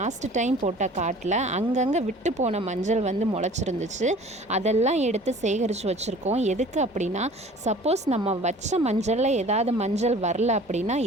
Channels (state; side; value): normal; both; correlation 0.47